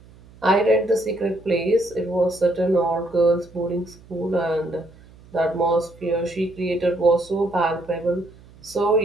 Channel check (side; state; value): right; noise; hum, 24 dB below the sound